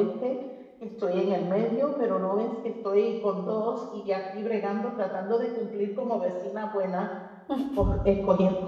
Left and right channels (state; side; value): identical; both; correlation 1.00